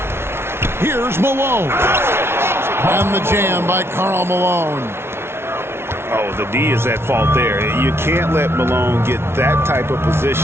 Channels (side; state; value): left; late; 0.12 ms